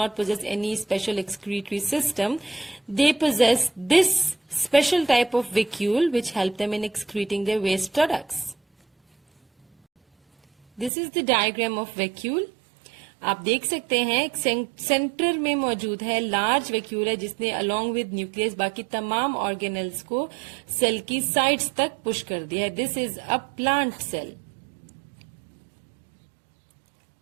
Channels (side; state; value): left; drops out; at 10.9 s